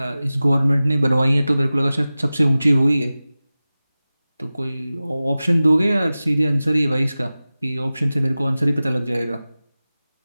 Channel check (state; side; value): inverted; both; correlation -0.96